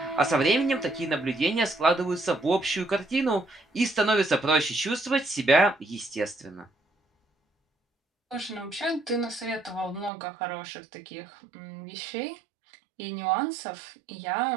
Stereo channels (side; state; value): left; drops out; at 10.1 s